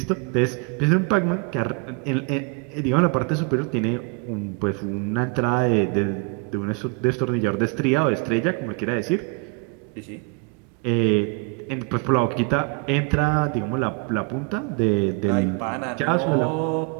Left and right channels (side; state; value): left; quieter; 33.3 dB